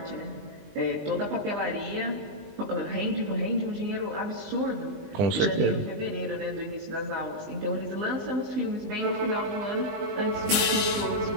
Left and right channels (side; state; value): left; late; 20 ms